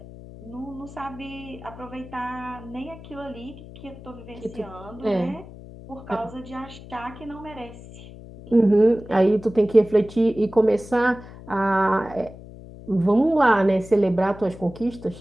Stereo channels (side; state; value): left; noise; hum, 16 dB below the sound